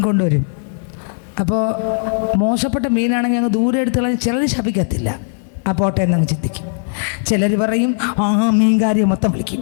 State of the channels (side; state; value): right; silent; digital silence